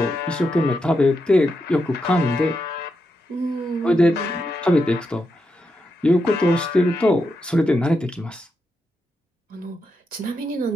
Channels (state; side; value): normal; both; correlation 0.85